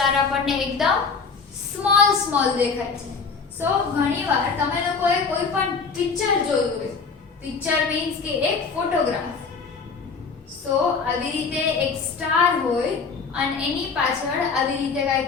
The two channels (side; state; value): right; quieter; 5.1 dB